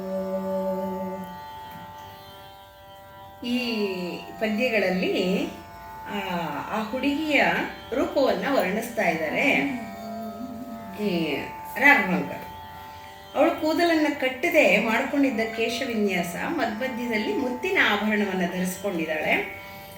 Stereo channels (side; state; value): both; identical; correlation 1.00